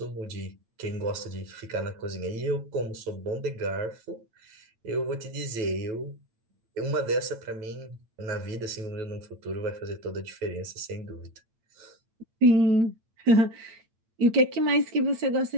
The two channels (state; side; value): late; left; 8.8 ms